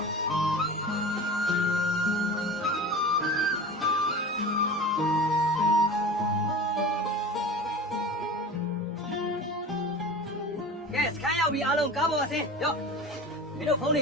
ကဲစခန်းရောက်ပြီအားလုံးကားပေါ်အဆင်းရော့မင်းတို့ဖုန်းတွ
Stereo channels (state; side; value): normal; both; correlation 0.34